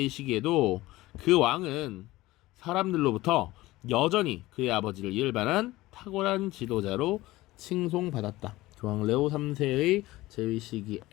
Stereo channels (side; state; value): right; quieter; 18.3 dB